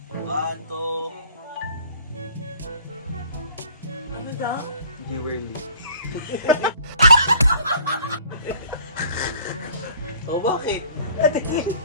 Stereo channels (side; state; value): both; inverted; correlation -0.53